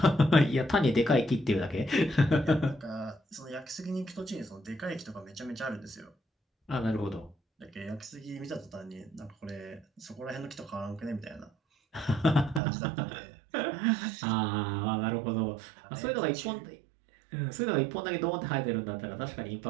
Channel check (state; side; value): drops out; left; at 12.6 s